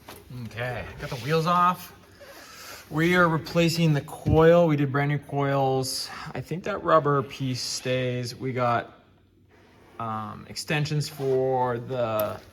Okay, got the wheels off. We are replacing the coil. We did brand new coils. I think that rubber piece stays. We got extensions for the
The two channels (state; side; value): identical; both; correlation 1.00